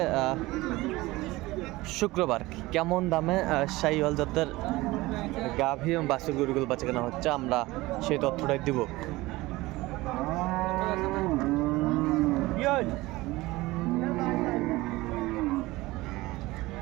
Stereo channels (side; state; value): left; quieter; 19.8 dB